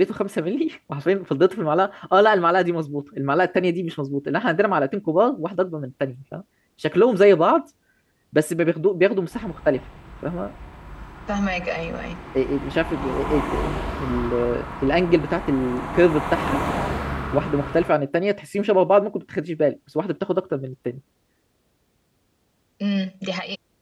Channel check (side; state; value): both; identical; correlation 1.00